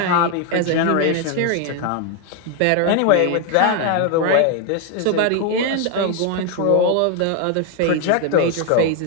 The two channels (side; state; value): both; different; correlation 0.01